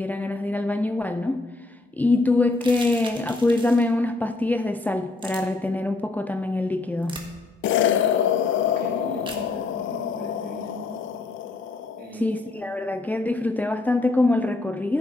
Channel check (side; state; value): right; quieter; 3.3 dB